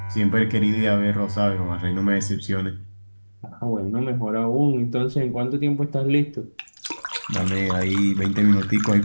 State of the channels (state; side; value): inverted; both; correlation -1.00